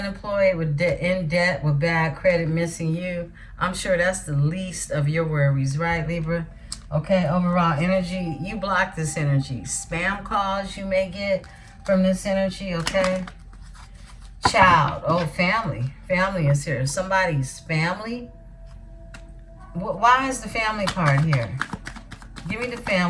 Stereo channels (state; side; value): identical; both; correlation 1.00